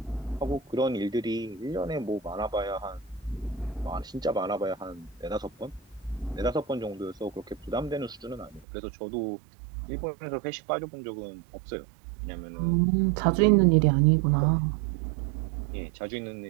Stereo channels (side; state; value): left; drops out; at 8.7 s